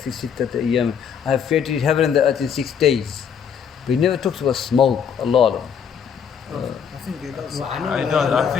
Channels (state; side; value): quieter; right; 7.5 dB